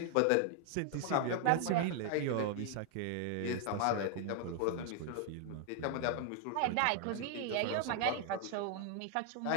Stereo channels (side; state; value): both; different; correlation 0.00